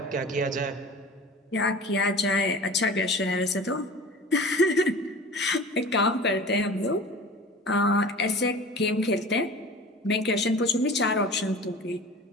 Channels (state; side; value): normal; both; correlation 0.39